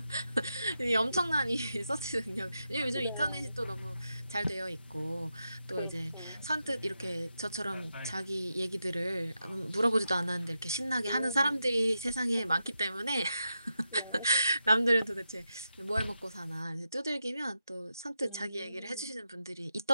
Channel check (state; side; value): inverted; both; correlation -0.87